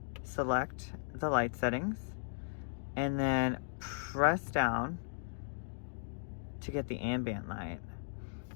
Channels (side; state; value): right; silent; digital silence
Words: Select the light settings and then press down to get the ambient light